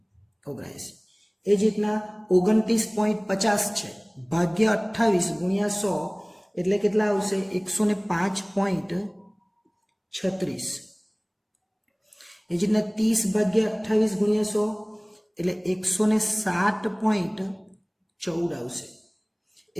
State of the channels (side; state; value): both; identical; correlation 1.00